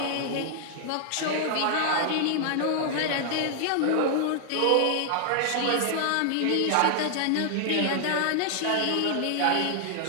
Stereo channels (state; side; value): different; both; correlation 0.00